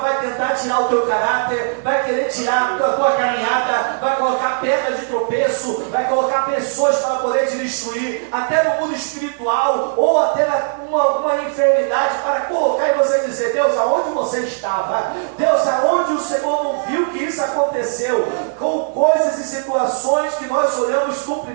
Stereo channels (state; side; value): silent; left; 59 dB below the other